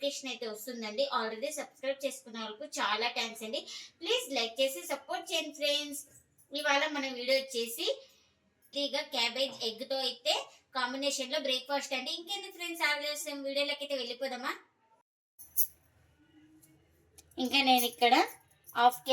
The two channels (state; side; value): identical; both; correlation 1.00